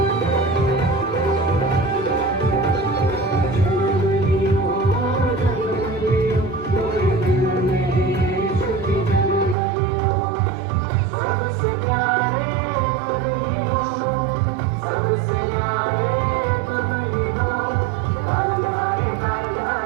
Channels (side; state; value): left; drops out; at 9.6 s